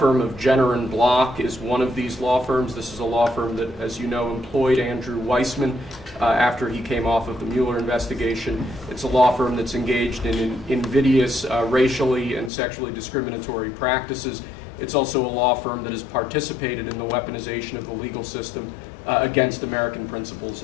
of Jenner and Block is one of these law firms. This is a law firm that, as you know, employed Andrew Weissman after he came off of the Mueller investigation. It's a law firm that's engaged in invidious racially and sexually discriminatory practices. It's also a law firm that has participated in the weaponization of the legal system against American principles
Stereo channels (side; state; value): right; drops out; at 12.5 s